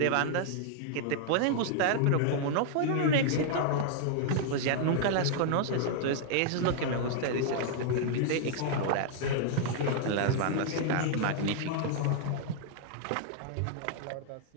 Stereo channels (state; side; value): different; both; correlation -0.01